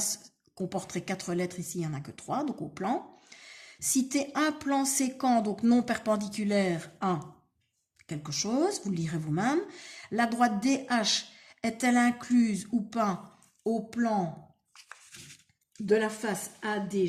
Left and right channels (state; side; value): identical; both; correlation 1.00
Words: comporterait 4 lettres, ici il n'y en a que 3, donc au plan. Citer un plan séquent, donc non perpendiculaire à quelque chose, vous le lirez vous-même. La droite DH est-elle incluse ou pas au plan de la face